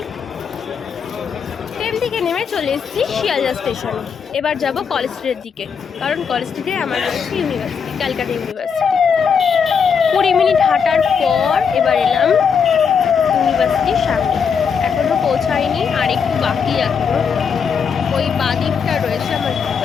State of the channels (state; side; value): quieter; right; 6.5 dB